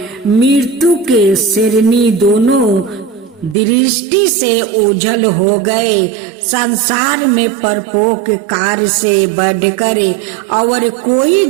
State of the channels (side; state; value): left; drops out; at 3.6 s